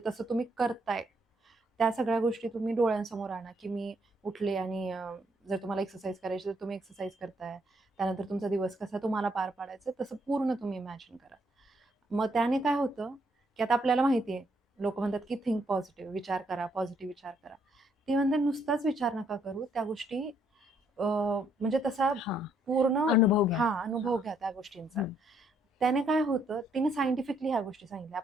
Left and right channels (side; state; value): both; normal; correlation 0.71